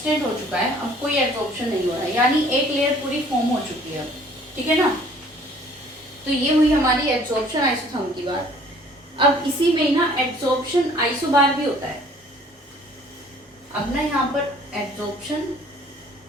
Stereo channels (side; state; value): both; normal; correlation 0.55